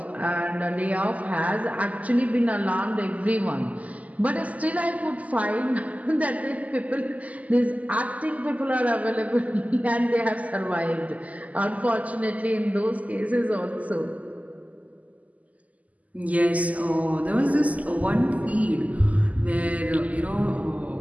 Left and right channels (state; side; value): late; left; 0.074 ms